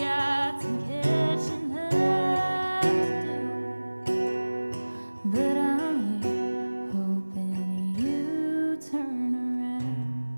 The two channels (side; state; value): both; inverted; correlation -1.00